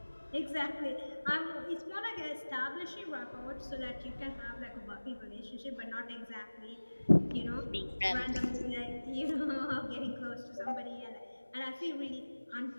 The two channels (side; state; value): both; inverted; correlation -1.00